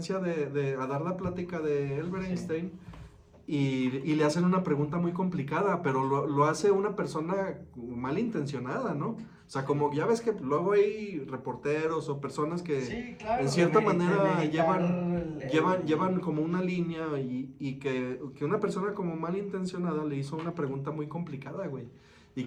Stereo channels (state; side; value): identical; both; correlation 1.00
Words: a dar la plática de Albert Sí. Einstein y le hacen una pregunta muy complicada, pero lo hace una persona malintencionada, ¿no? O sea, como ya ves que luego hay reporteros o personas que Sí, claro, en cierta de manera meditar llevan como una línea y que una persona como malintencionada le hizo una pregunta muy complicada, güey. Y